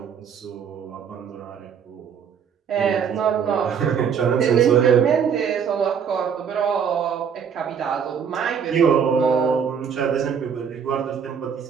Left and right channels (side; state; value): left; quieter; 7.3 dB